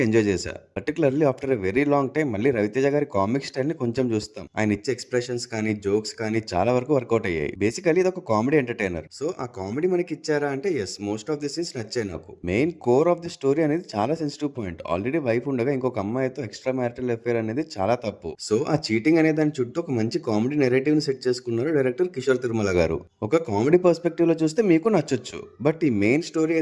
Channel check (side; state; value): both; identical; correlation 1.00